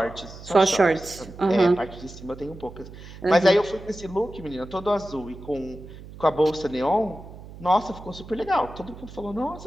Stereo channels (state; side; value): noise; right; hum, 16 dB below the sound